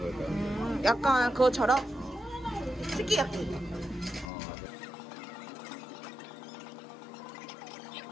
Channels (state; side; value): drops out; right; at 4.3 s